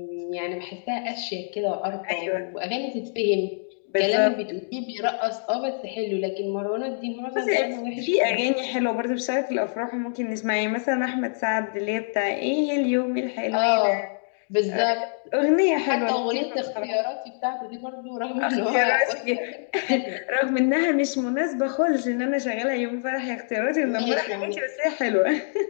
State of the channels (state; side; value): silent; right; digital silence